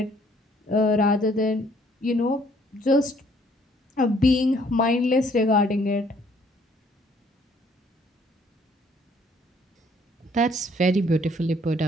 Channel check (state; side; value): normal; both; correlation 0.63